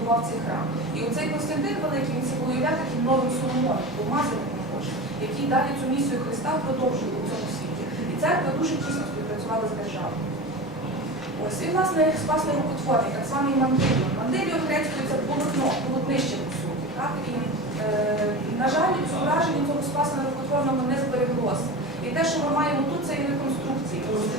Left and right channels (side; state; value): both; normal; correlation 0.29